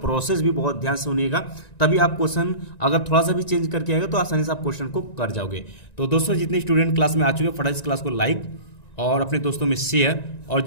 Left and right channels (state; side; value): late; right; 1.9 ms